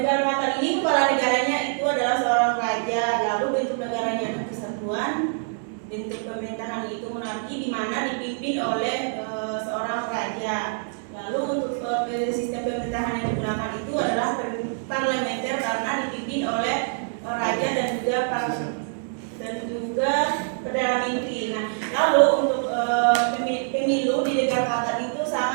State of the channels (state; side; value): silent; left; digital silence